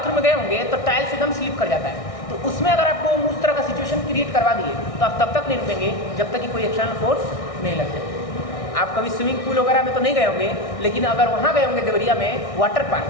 में गए होंगे तो टाइल्स एकदम स्लिप कर जाता है, तो उसमें अगर आपको उस तरह का सिचुएशन क्रिएट करवा दिए तो आप तब तक नहीं रुकेंगे जब तक कि कोई एक्सटर्नल फोर्स नहीं लग जाए। आप कभी स्विमिंग पूल वगैरह में तो नहीं गए होंगे, लेकिन अगर वहाँ गए होंगे देवरिया में वाटर पार्क,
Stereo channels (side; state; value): right; late; 1.6 ms